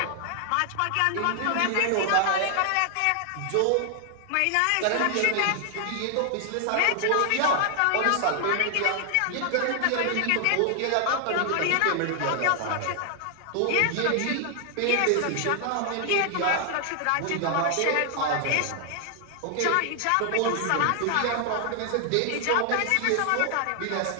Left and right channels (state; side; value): different; both; correlation 0.00